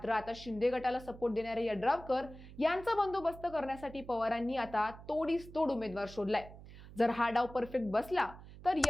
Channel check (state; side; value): noise; right; hum, 17 dB below the sound